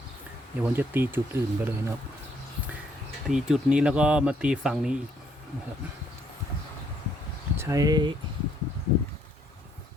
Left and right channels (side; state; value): both; normal; correlation 0.69